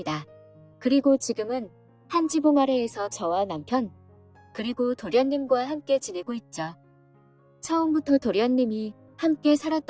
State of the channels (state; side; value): identical; both; correlation 1.00